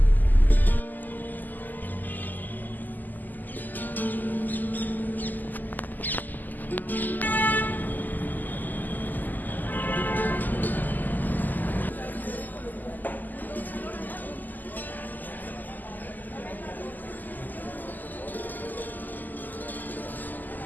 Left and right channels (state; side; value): late; right; 0.085 ms